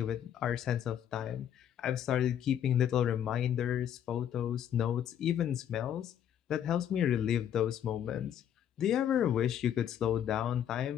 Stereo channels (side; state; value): right; quieter; 9.8 dB